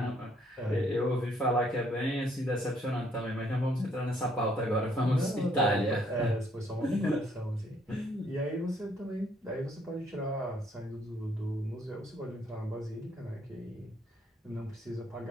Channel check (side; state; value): both; normal; correlation 0.67